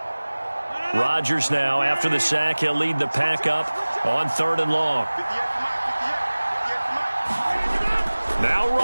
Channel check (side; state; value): both; inverted; correlation -1.00